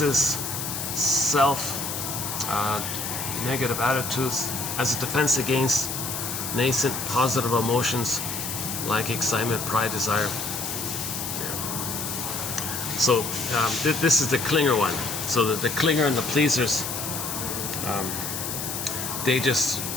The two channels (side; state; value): left; noise; hiss, 4 dB below the sound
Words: self negative attitudes as a defense against nascent positive emotions like excitement, pride, desire. Yeah. So this is the clinger one. So the clinger and the pleasers, they just